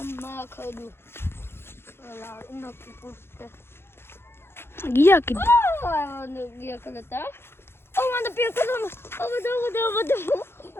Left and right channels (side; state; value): right; late; 0.11 ms